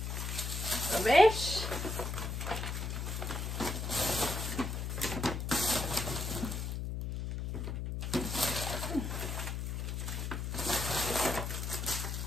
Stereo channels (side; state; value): left; noise; hum, 3 dB below the sound